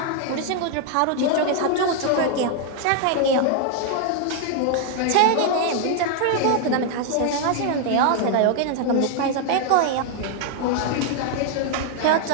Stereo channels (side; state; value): both; different; correlation 0.00